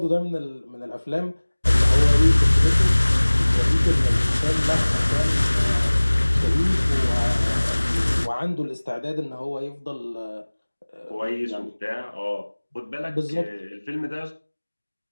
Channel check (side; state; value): both; inverted; correlation -1.00